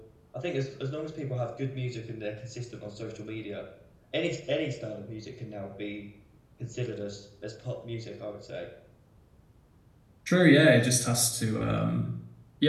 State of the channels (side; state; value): both; identical; correlation 1.00